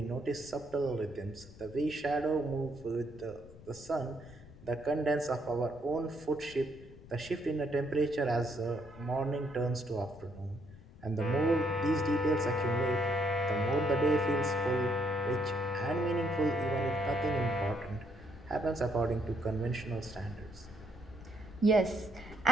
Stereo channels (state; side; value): noise; left; rumble, 19 dB below the sound